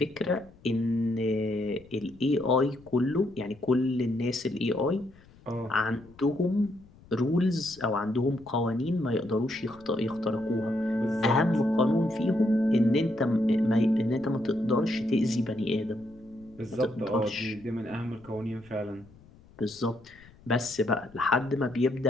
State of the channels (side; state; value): left; noise; rumble, 25 dB below the sound